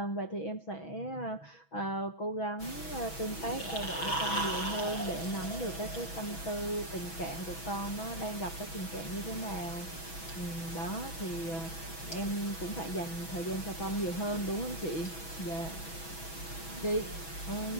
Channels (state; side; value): late; right; 6.1 ms